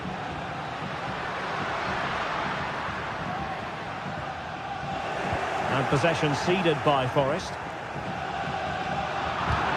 And possession ceded by Forest.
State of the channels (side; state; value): both; identical; correlation 1.00